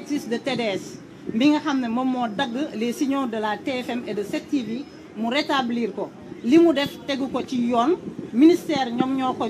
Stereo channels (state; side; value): identical; both; correlation 1.00